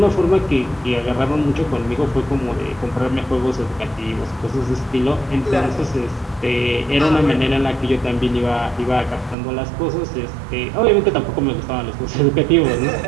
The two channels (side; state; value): left; drops out; at 9.3 s